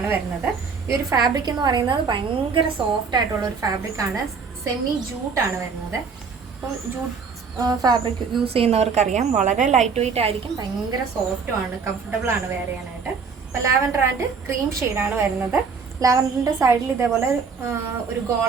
വരുന്നത്. ഈ ഒരു ഫാബ്രിക് എന്ന് പറയുന്നത് ഭയങ്കര സോഫ്റ്റ് ആയിട്ടുള്ള ഒരു ഫാബ്രിക് ആണ്. സെമി ജൂട്ടാണ് വരുന്നത്. അപ്പം ജൂട്ട് ഫാബ്രിക് യൂസ് ചെയ്യുന്നവർക്കറിയാം വളരെ ലൈറ്റ് വെയിറ്റ് ആയിരിക്കും, ഭയങ്കര സോഫ്റ്റും ആണ്, കംഫർട്ടബിൾ ആണ് വെയർ ചെയ്യാനായിട്ട്. അപ്പോൾ ലാവൻഡർ ആൻഡ് ക്രീം ഷെയ്ഡാണ് വരുന്നത്. ലാവൻഡറിൻ്റെ സൈഡിൽ ഇതേപോലെ ഒരു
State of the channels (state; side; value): quieter; left; 5.4 dB